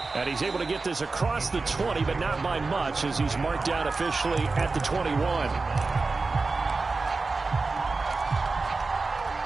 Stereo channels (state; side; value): quieter; left; 3.9 dB